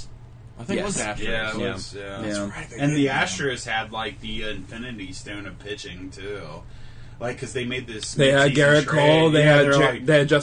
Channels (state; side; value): identical; both; correlation 1.00